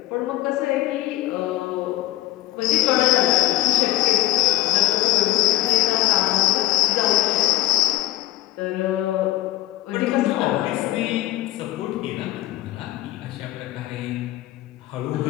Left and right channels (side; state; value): right; quieter; 15.6 dB